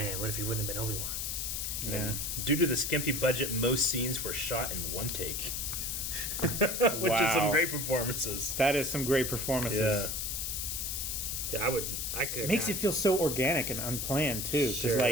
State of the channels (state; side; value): noise; left; hiss, 2 dB below the sound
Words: what if he wouldn't have been Obi-Wan? Yeah. Due to the skimpy budget, most scenes were shot in one take. Which is some Wow. great performances. That is some great performances. Yeah. Yeah, I could. Makes it feel so organic and unplanned too, because Sure.